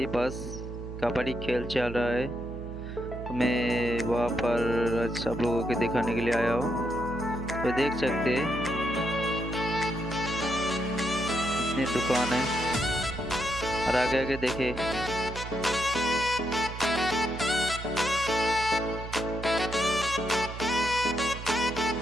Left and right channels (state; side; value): noise; right; hum, 9 dB below the sound